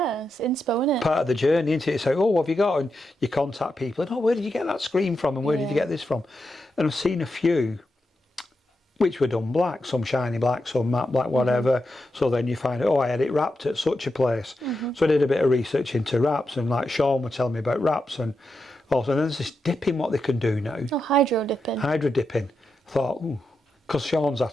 isn't it? Part of the journey, isn't it? It's like, oh, what have you got? And you contact people, and oh, where did you get that screen from, and where did you get this from? And I've seen a few which were done black, some shiny black, some matte black, whatever. So then you find, oh, I had it wrapped at such a place. So I did a bit of research into wraps, and like Sean would tell me about wraps, and also there's this dipping what they can do now. Oh, hydro dipping. Hydro dipping. I thought, ooh, because Sean's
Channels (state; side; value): normal; both; correlation 0.87